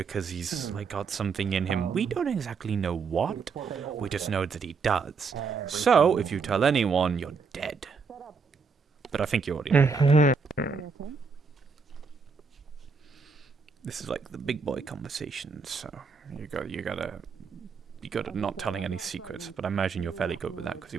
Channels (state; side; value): quieter; left; 5.2 dB